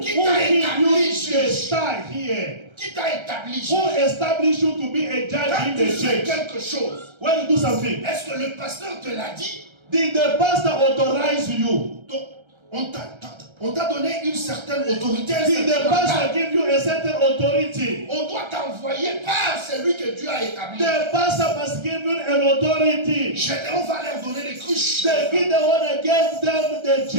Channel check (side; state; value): left; late; 1.3 ms